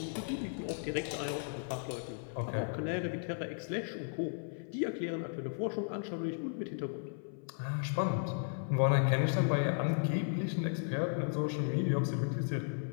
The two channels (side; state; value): right; silent; 54 dB below the other